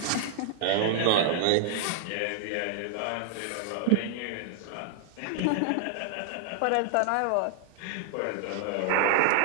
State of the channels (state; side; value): different; both; correlation -0.01